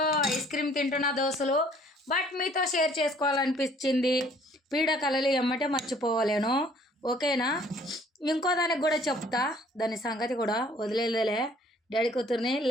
ఐస్ క్రీమ్ తింటున్న దోస్తులు, బట్ మీతో షేర్ చేసుకోవాలనిపించింది. పీడకలలు ఎమ్మటే మర్చిపోవలేను, ఓకేనా? ఇంకో దానికి కూడా చెప్తా, దాని సంగతి కూడా వదిలేదులే. డాడీ కూతుర్ని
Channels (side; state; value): both; normal; correlation 0.58